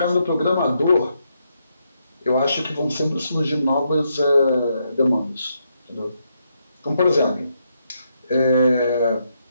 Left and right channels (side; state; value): both; inverted; correlation -0.79